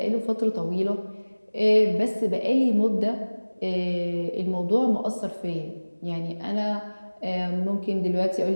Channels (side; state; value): both; inverted; correlation -1.00